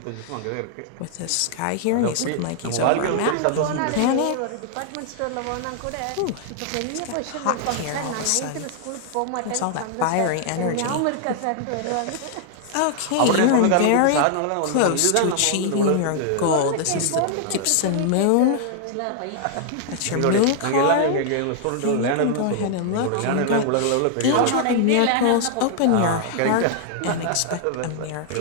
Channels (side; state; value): both; different; correlation 0.00